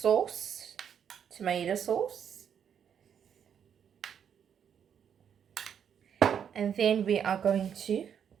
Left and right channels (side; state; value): left; quieter; 8.2 dB